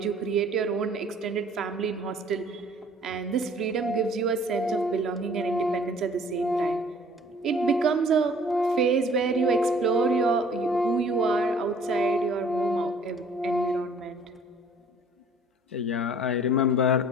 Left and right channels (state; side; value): normal; both; correlation 0.54